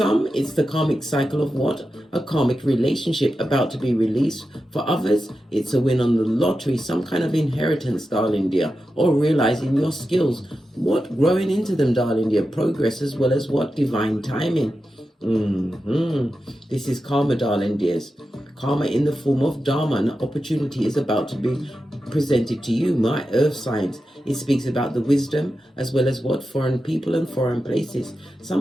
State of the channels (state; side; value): normal; both; correlation 0.91